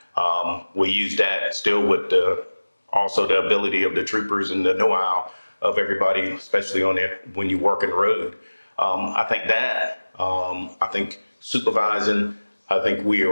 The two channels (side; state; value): both; inverted; correlation -1.00